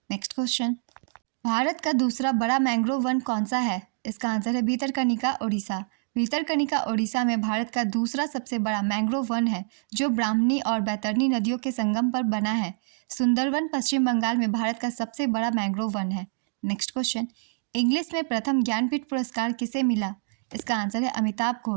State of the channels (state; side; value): silent; left; digital silence